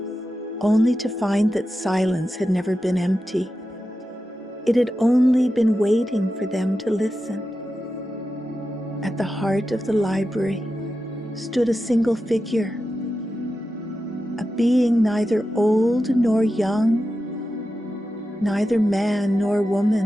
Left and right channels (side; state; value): both; normal; correlation 0.91